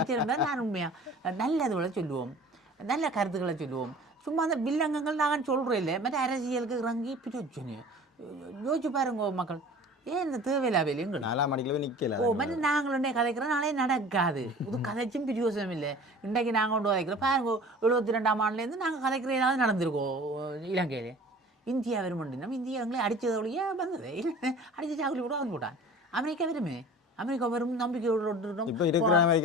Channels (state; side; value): normal; both; correlation 0.44